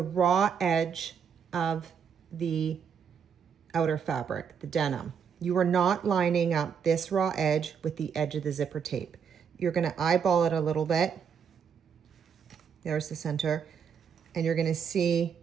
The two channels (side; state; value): left; quieter; 7.0 dB